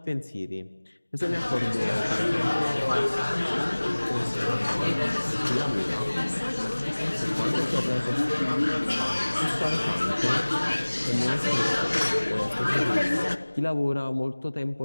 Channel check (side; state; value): both; inverted; correlation -1.00